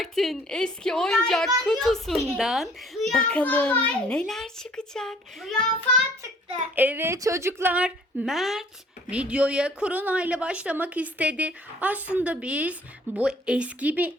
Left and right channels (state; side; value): normal; both; correlation 0.56